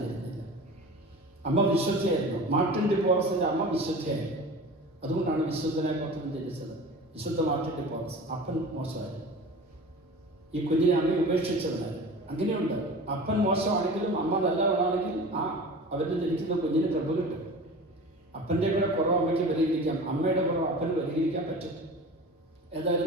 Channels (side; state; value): both; normal; correlation 0.37